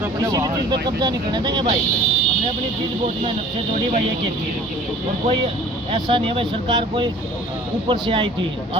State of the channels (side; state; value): both; normal; correlation 0.49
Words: अपने चीज़ पे कब्जा नहीं करने देंगे भाई। हमने अपनी चीज़ बहुत मेहनत से जोड़ी भाई, एक चीज़, और कोई ऐसा नहीं है भाई सरकार कोई ऊपर से आई थी,